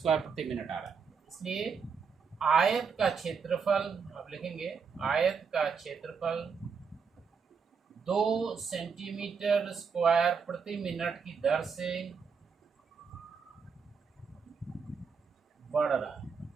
प्रति मिनट आ रहा है। इसलिए आयत का क्षेत्रफल आप लिखेंगे, आयत का क्षेत्रफल 2 सेंटीमीटर स्क्वायर प्रति मिनट की दर से बढ़ रहा है,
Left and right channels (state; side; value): quieter; left; 5.8 dB